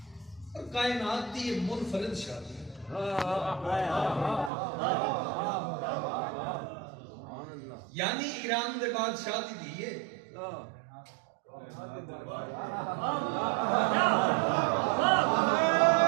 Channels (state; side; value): drops out; left; at 4.5 s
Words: اور کائنات دی یہ منفرد شادی یعنی ایران دے بعد شادی دیئے